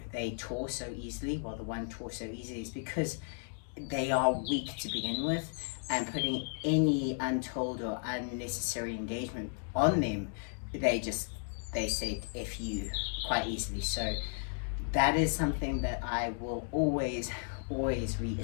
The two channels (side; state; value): right; silent; 55 dB below the other